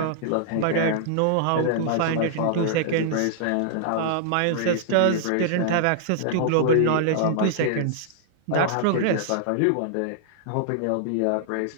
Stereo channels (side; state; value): both; different; correlation -0.01